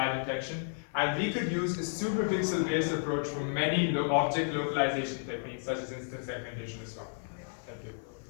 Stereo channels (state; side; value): silent; right; 56 dB below the other